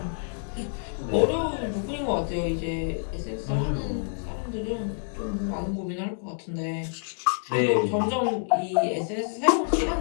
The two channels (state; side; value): silent; right; digital silence